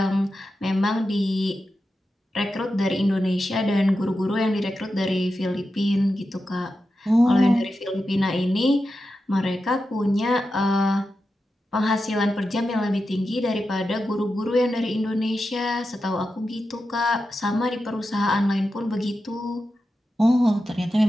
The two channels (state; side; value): normal; both; correlation 0.90